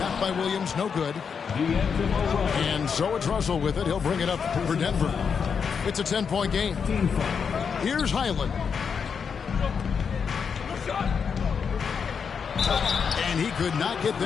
by Williams, no good. And so it's Russell with it. He'll bring it up for Denver. It's a 10-point game. Here's Highland. And he could not get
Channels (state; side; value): quieter; right; 6.4 dB